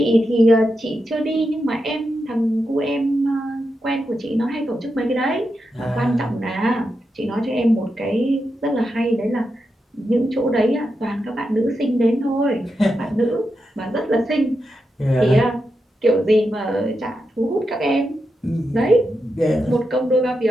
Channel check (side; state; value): both; normal; correlation 0.87